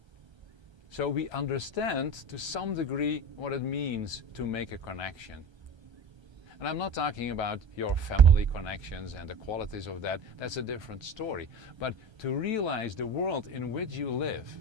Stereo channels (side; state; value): left; late; 1.3 ms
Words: So we understand to some degree what it means to make a connection. And I'm not talking about your family connections and the qualities of that. That's a different story. But to realize the world in which you live